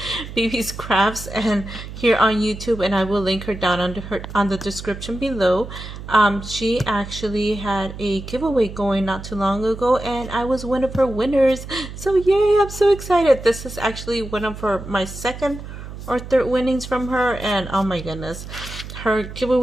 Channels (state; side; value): noise; right; hum, 11 dB below the sound